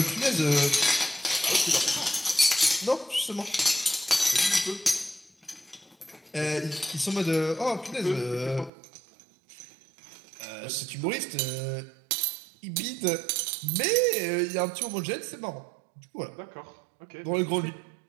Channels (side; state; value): left; drops out; at 8.7 s